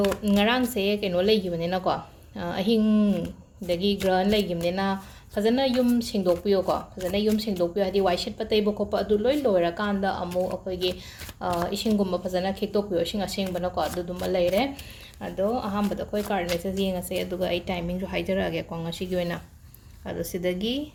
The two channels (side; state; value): both; identical; correlation 1.00